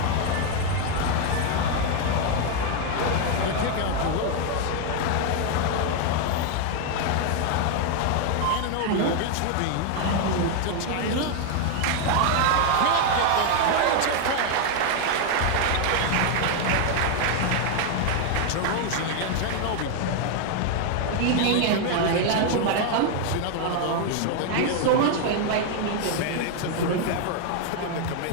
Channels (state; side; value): different; both; correlation 0.01